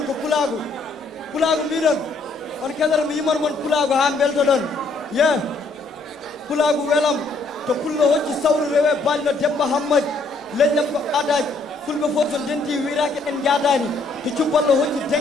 ko pulagu midon on kedere mi yimor mon pulagu ha belto don yeah pulagu welam to pullo hocci sawru rewe ballo debba hammad lejjam ko adaj fulbe fof so denti wirake en jadani to cubballo hocci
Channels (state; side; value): quieter; right; 3.3 dB